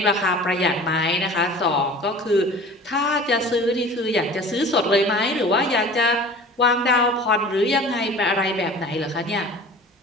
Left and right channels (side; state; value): both; normal; correlation 0.42